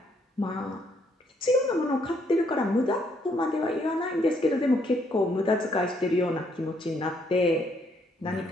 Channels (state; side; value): normal; both; correlation 0.70